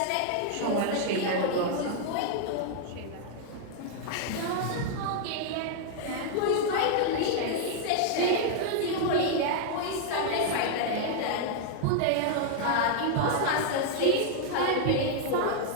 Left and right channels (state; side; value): different; both; correlation 0.00